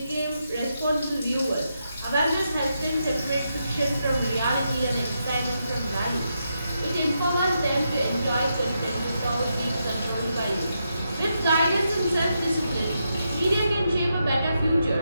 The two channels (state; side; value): inverted; both; correlation -0.83